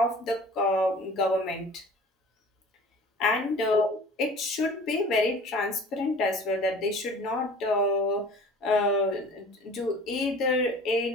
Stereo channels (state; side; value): normal; both; correlation 0.44